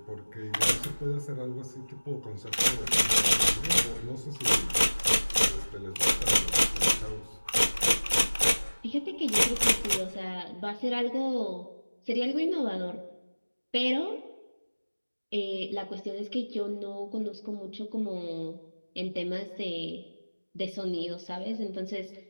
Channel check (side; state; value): both; inverted; correlation -1.00